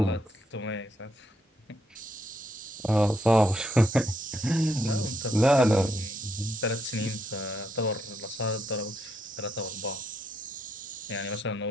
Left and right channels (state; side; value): normal; both; correlation 0.77